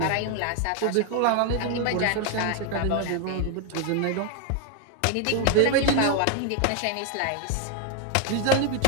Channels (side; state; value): both; different; correlation 0.01